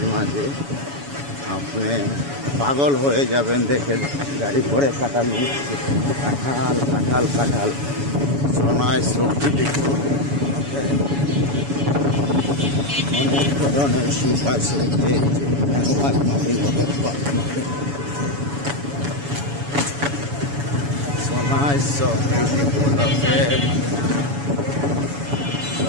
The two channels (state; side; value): late; left; 7.1 ms